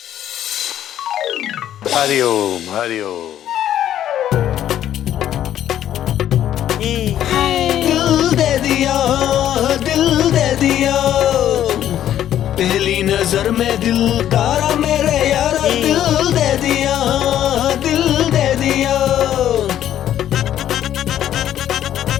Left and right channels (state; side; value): quieter; right; 11.3 dB